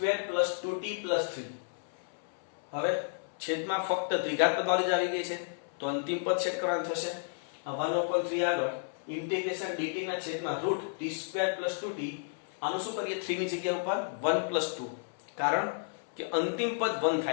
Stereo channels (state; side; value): silent; right; 56 dB below the other